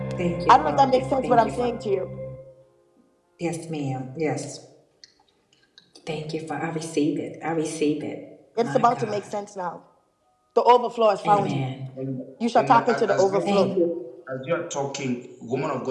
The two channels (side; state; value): both; identical; correlation 1.00